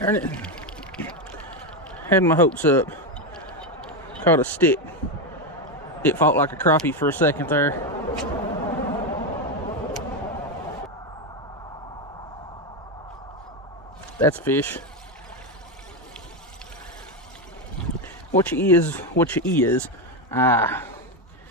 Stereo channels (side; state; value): both; normal; correlation 0.10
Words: it. Had my hopes up. Caught a stick. It fought like a crappie for a second there. That's fish. What you is.